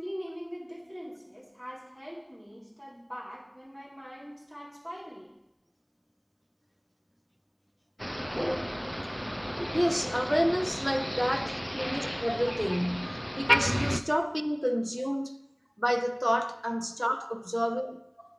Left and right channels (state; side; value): identical; both; correlation 1.00